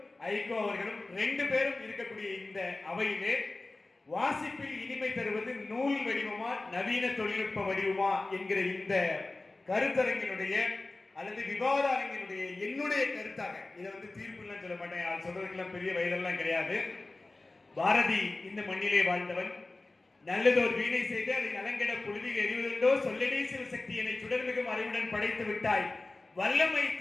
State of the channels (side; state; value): right; quieter; 3.1 dB